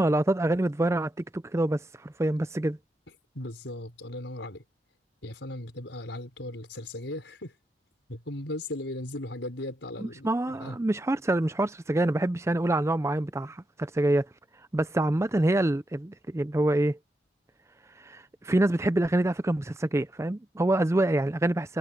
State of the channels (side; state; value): both; normal; correlation 0.85